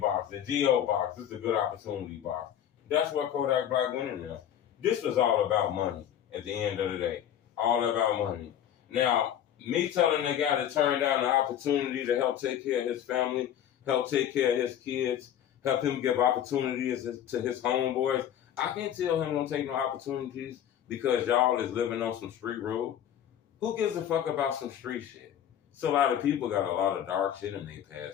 The GO box, this is a good opportunity box. That's what Kodak Black went in there. This was all about money at the end of the day. All about money. Now, me telling the guy to turn down the opportunity to help take care of his family, help take care of his kids, help him give opportunities to his homeboys, I can't tell him don't take no opportunities because y'all is living on some street rule. Who gives a fuck about some street shit? So a lot of people got a lot of dark shit in their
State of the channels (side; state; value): right; quieter; 10.2 dB